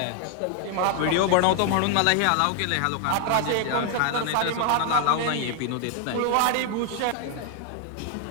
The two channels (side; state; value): both; different; correlation 0.00